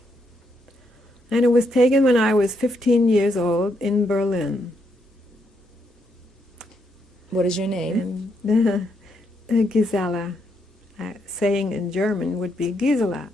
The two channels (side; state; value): both; normal; correlation 0.77